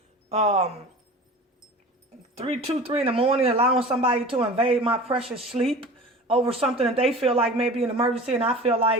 3 in the morning, allowing somebody to invade my precious sleep over something that they feel like may be an emergency, and I feel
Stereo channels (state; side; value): normal; both; correlation 0.38